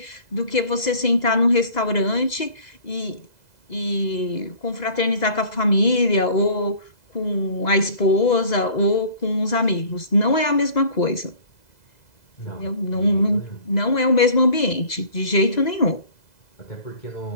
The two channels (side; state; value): right; late; 2.0 ms